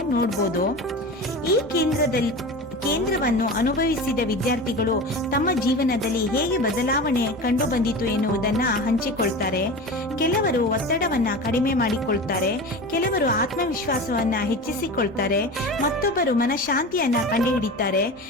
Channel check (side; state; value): both; normal; correlation 0.30